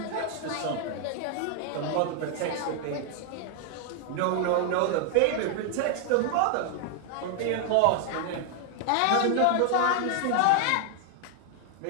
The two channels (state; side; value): different; both; correlation 0.00